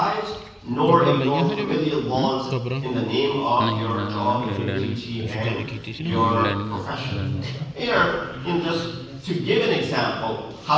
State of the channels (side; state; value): both; identical; correlation 1.00